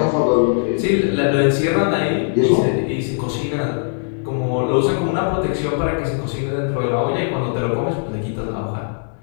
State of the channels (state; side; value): silent; right; digital silence